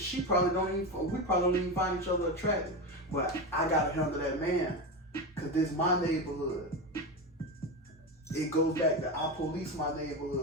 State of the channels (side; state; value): both; normal; correlation 0.19